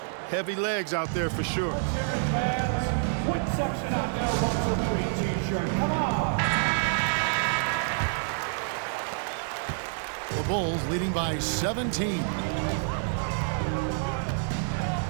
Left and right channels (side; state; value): left; silent; 59 dB below the other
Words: Heavy legs out there for sure. Quick section out there, 1-2-3 t-shirt. Come on. The Bulls leading by 17.